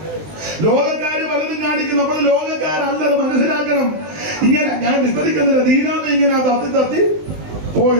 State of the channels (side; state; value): left; late; 20 ms